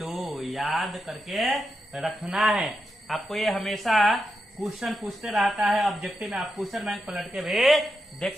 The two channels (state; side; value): normal; both; correlation 0.86